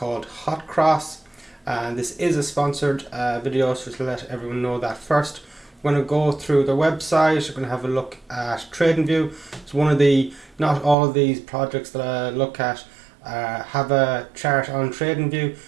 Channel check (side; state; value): left; drops out; at 11.0 s